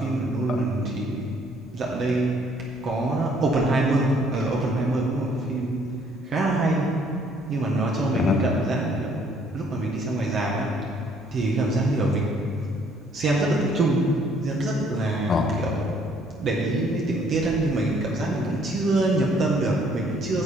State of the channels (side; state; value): both; normal; correlation 0.63